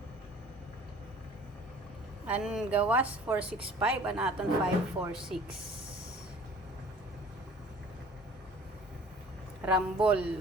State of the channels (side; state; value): both; normal; correlation 0.48